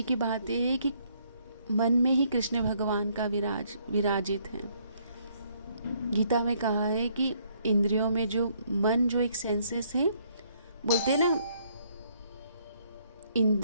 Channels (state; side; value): inverted; both; correlation -0.68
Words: की बात यह है कि मन में ही कृष्ण भगवान का विराजित है। गीता में कहा है कि इंद्रियों में जो मन, जो एक सेंसेस है, बोलते हैं ना